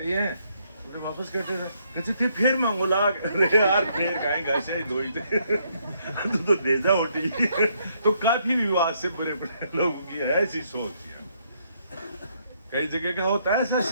ही हैं, तो वापस करते थे, कहते थे फिर मांगो लाग, अरे यार फिर खाएंगे ऐसे ही दो ही थे तो दे जा रोटी तो काफी विवाद से बड़े बड़े लोगों की ऐसी सोच है, कई जगह का होता है ऐसा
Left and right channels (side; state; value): both; inverted; correlation -0.72